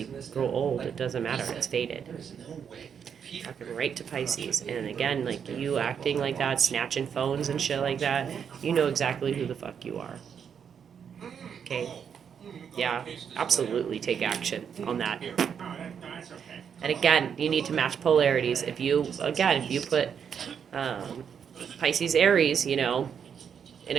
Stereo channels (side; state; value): left; quieter; 7.5 dB